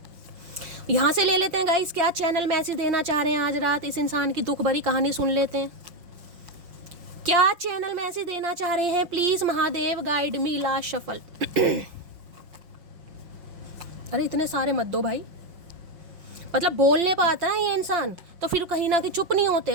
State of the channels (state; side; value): late; left; 5.6 ms